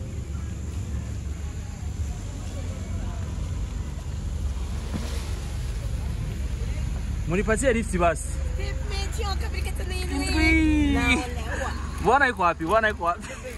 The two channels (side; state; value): both; identical; correlation 1.00